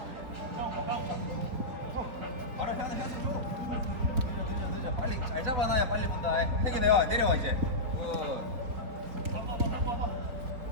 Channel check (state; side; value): late; left; 4.4 ms